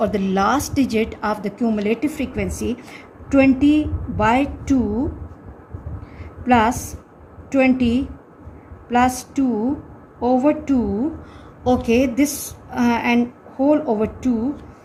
the last digit of the cumulative frequency, 20 by 2 plus 20 plus 2 over 2. Okay, this and whole over 2,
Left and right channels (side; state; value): both; identical; correlation 1.00